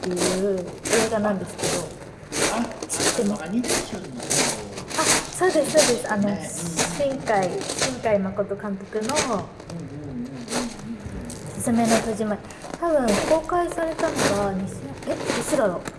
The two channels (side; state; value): both; identical; correlation 1.00